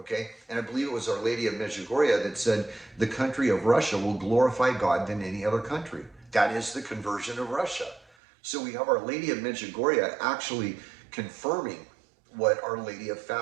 And I believe it was Our Lady of Medjugorje that said, the country of Russia will glorify God than any other country. That is the conversion of Russia. So we have Our Lady of Medjugorje actually confirming what Our Lady of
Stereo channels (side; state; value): left; drops out; at 8.1 s